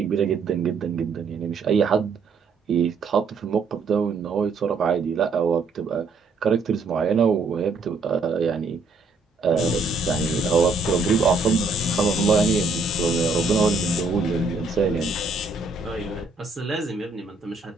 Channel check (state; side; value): quieter; left; 3.7 dB